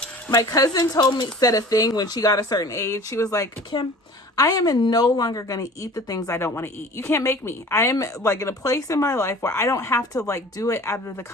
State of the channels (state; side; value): normal; both; correlation 0.44